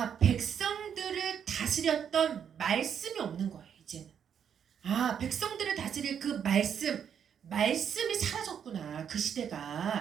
백성들을 다스렸던 말씀이 없는 거예요. 이제는 백성들을 다스릴 그 말씀이 사라졌구나. 그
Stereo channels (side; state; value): left; quieter; 8.1 dB